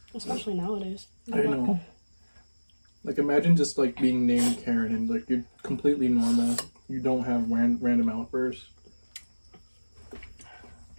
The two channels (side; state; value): both; inverted; correlation -1.00